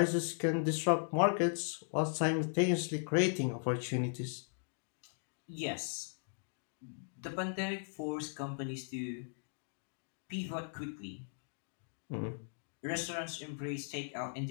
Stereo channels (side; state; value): right; silent; digital silence